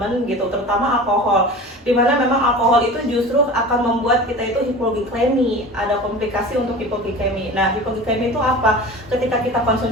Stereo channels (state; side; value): normal; both; correlation 0.36